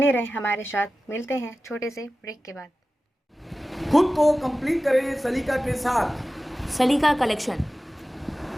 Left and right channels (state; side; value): normal; both; correlation 0.95